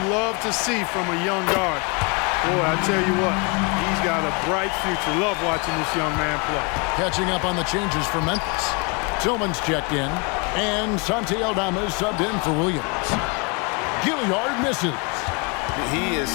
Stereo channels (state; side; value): quieter; right; 31.5 dB